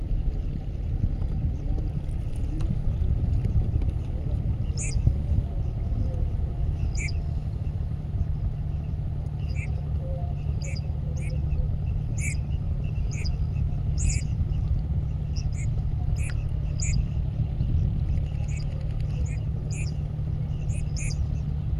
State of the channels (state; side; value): identical; both; correlation 1.00